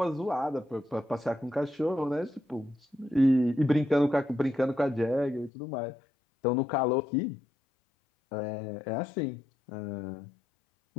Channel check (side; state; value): right; drops out; at 5.5 s